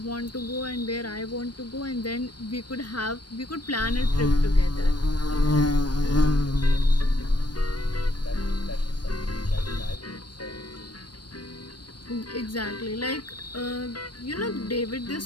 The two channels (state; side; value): late; right; 0.71 ms